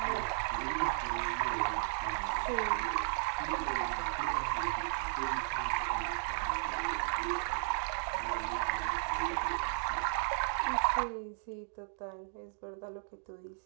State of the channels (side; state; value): left; silent; digital silence